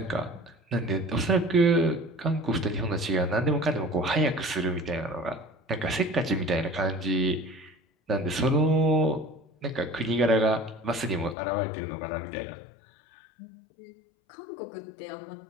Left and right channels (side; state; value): right; drops out; at 11.4 s